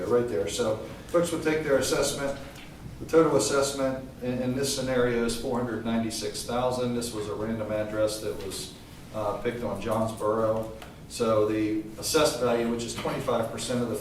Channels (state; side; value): identical; both; correlation 1.00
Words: right there. So folks would take their assessment. The total assessment in this scenario is $496,000. This was a random address that was picked on Johnsboro. So the assessed value, which is 25% of the